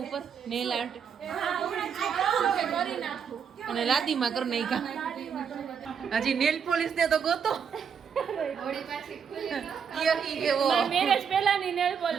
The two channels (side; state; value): left; quieter; 7.1 dB